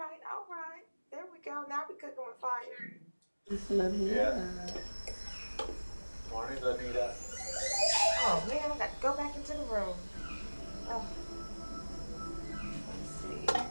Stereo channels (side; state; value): both; inverted; correlation -1.00